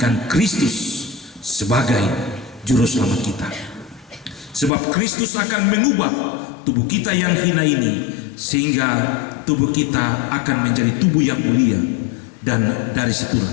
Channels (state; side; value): drops out; right; at 4.7 s